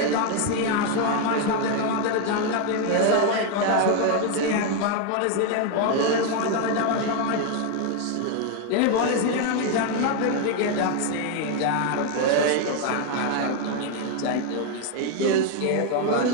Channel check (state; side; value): different; both; correlation 0.01